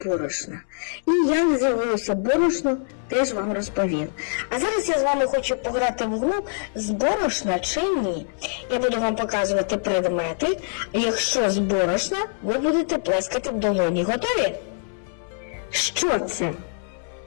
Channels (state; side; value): silent; right; 63 dB below the other